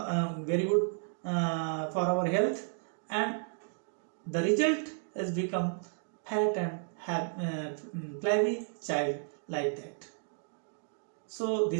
health, and the result has become fat and flabby child like that. So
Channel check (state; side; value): silent; left; digital silence